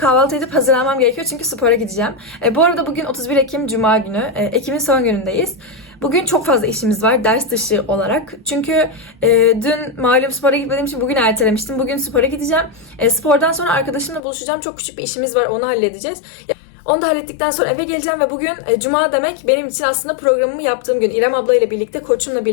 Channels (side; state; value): right; drops out; at 14.2 s